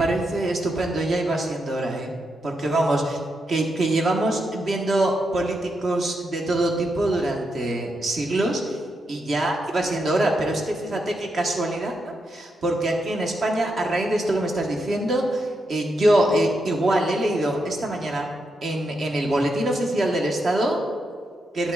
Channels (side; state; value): both; normal; correlation 0.83